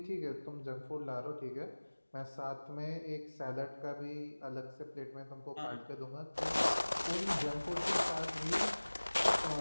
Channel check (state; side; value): inverted; both; correlation -1.00